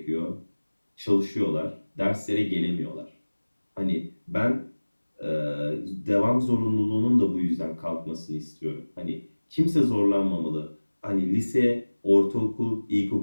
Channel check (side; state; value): both; inverted; correlation -1.00